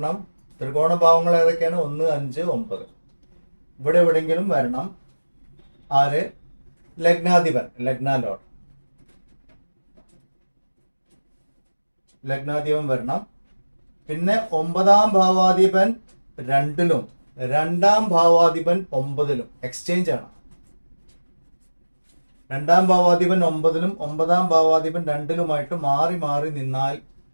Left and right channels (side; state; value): both; inverted; correlation -1.00